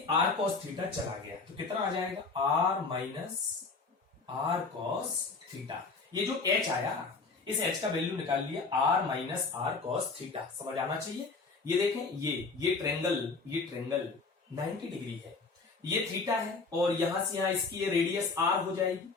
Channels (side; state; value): right; quieter; 4.2 dB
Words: r cos थीटा चला गया, तो कितना आ जाएगा, r minus r cos theta. ये जो h आया, इस h का वैल्यू निकाल लिया, r minus r cos theta, समझ आना चाहिए। ये देखें, ये ट्रेंगल 90 डिग्री है, ये थीटा है, और यहां से यहां इसकी ये रेडियस r हो जाएगी,